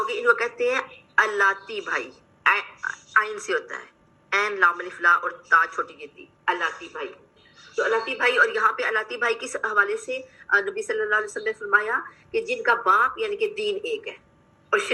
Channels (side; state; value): both; identical; correlation 1.00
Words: ان کو کہتے ہیں الاتی بھائی، آئین سے ہوتا ہے، این لام الف لا اور تا چھوٹی کی تی، الاتی بھائی. تو الاتی بھائی، اور یہاں پہ الاتی بھائی کس حوالے سے نبی صلی اللہ علیہ وسلم نے فرمایا کہ جن کا باپ یعنی کہ دین ایک ہے اور